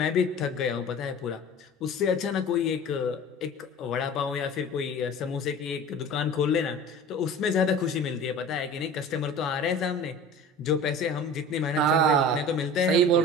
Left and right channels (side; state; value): both; normal; correlation 0.39